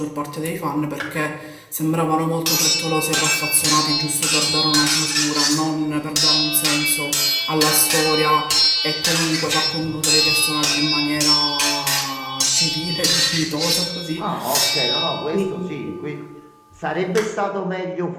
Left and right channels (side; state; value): both; identical; correlation 1.00